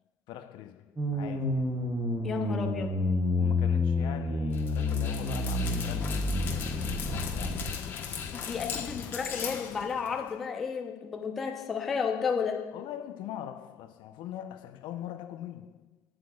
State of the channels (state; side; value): quieter; right; 3.5 dB